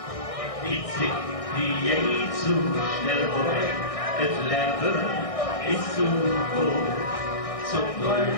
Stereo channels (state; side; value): late; right; 1.6 ms